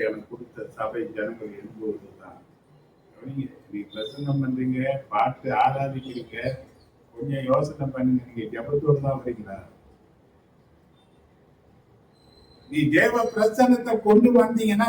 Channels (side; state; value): both; identical; correlation 1.00